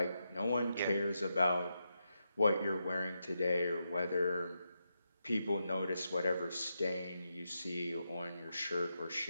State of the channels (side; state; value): both; inverted; correlation -0.85